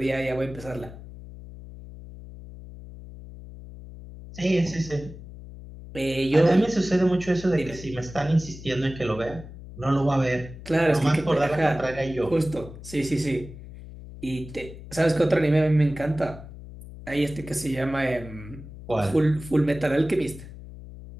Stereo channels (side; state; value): left; noise; hum, 15 dB below the sound